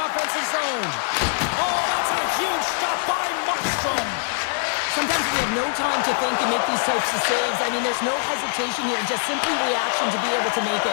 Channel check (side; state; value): right; silent; 63 dB below the other